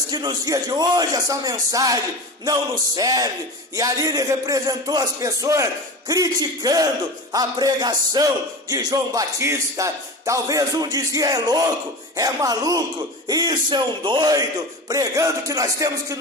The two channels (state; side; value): normal; both; correlation 0.29